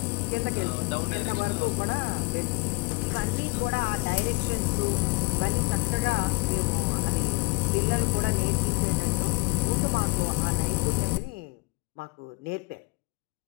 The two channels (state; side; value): quieter; right; 25.6 dB